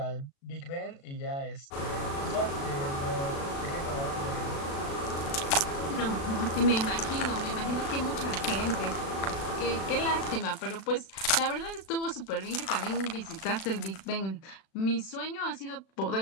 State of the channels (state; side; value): late; right; 36 ms